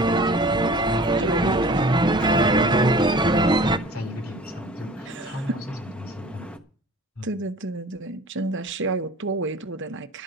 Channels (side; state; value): both; normal; correlation 0.45